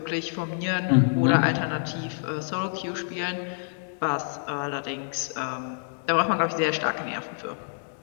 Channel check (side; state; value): right; silent; digital silence